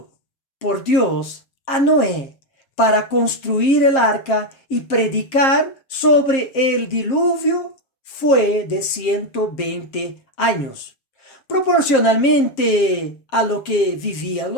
por Dios a Noé para construir el arca y predicar sobre el diluvio fue de 120 años. Proporcionalmente a lo que vivían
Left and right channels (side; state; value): right; late; 7.5 ms